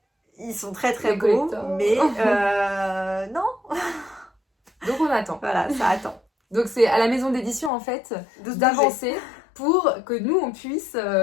ils sont très très beaux. Mais non. Donc on attend. Voilà, ça attend. Donc c'est à la maison d'édition en fait d'avancer pour que nous on puisse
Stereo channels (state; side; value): drops out; right; at 7.7 s